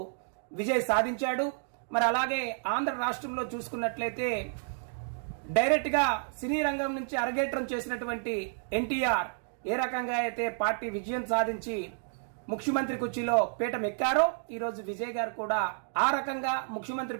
విజయ్ సాధించాడు. మరి అలాగే ఆంధ్ర రాష్ట్రంలో చూసుకున్నట్లయితే డైరెక్ట్ గా సినీ రంగం నుంచి అరగేట్రం చేసినటువంటి ఎన్టీఆర్ ఏ రకంగా అయితే పార్టీ విజయం సాధించి ముఖ్యమంత్రి కుర్చీలో పీఠం ఎక్కారో ఈరోజు విజయ్ గారు కూడా ఆ రకంగా ముఖ్యమంత్రి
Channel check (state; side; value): silent; left; digital silence